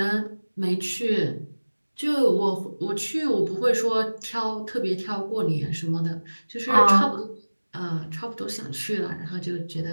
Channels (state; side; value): inverted; both; correlation -1.00